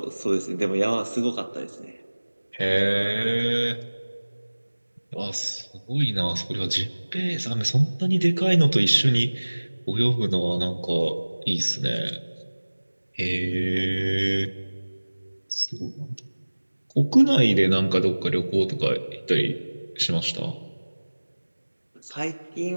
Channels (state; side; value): inverted; both; correlation -1.00